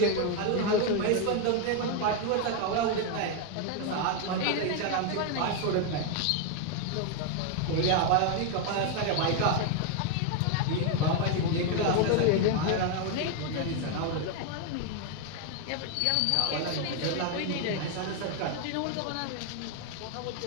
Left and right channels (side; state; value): both; different; correlation 0.01